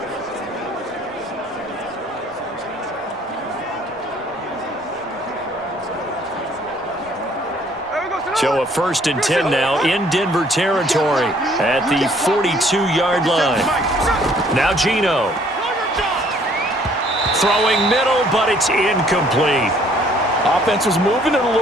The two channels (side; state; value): both; normal; correlation 0.60